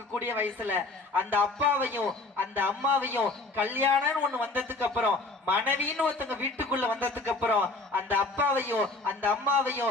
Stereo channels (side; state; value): right; quieter; 3.2 dB